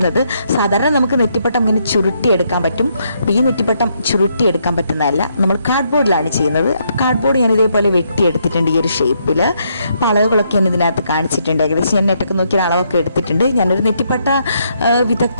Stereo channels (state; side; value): inverted; both; correlation -0.75